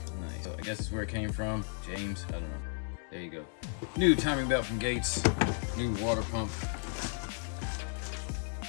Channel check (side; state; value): right; silent; 55 dB below the other